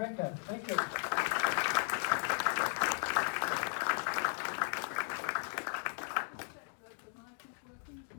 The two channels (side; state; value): right; silent; 54 dB below the other